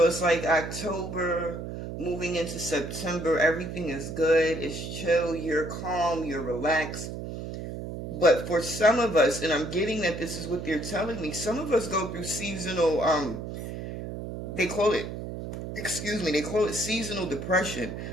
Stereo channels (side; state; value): right; noise; hum, 7 dB below the sound